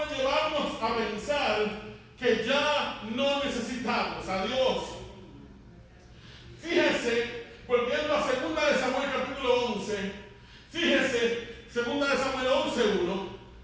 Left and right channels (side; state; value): both; identical; correlation 1.00